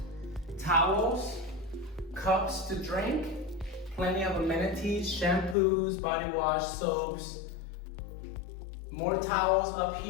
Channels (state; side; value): drops out; right; at 5.6 s